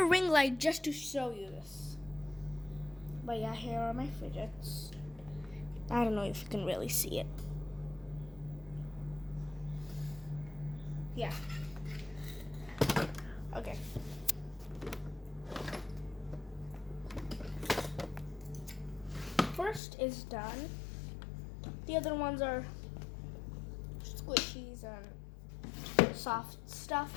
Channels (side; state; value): right; drops out; at 19.8 s